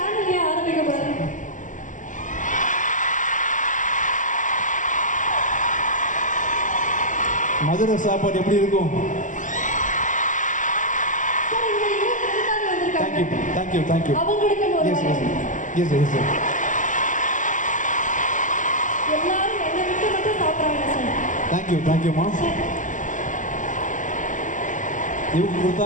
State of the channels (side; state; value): right; late; 0.37 ms